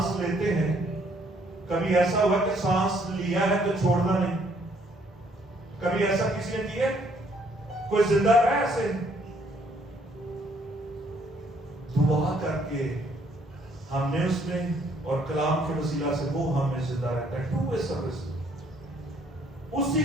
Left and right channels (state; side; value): normal; both; correlation 0.65